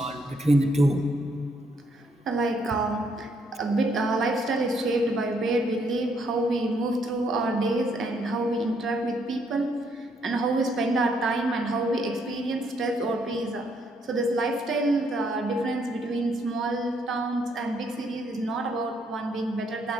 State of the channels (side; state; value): both; normal; correlation 0.71